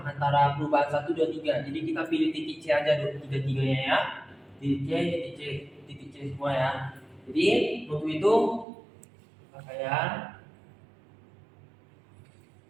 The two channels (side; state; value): left; drops out; at 8.7 s